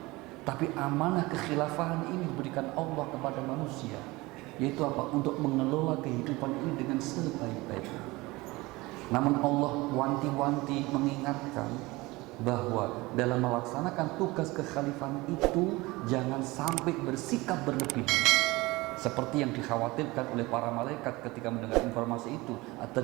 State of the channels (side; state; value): left; quieter; 21.7 dB